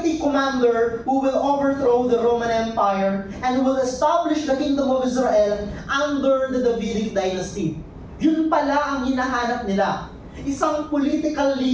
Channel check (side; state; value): both; identical; correlation 1.00